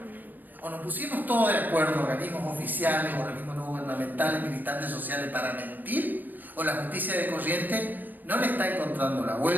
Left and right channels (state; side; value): late; left; 0.089 ms